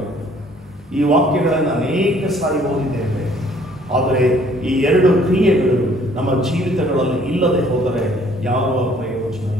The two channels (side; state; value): both; normal; correlation 0.60